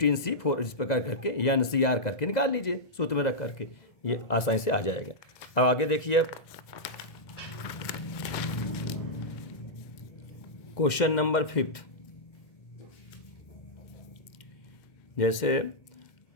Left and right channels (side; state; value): right; late; 2.1 ms